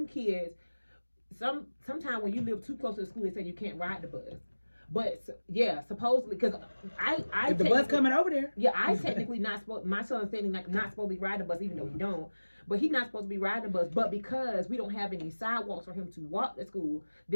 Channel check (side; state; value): both; inverted; correlation -1.00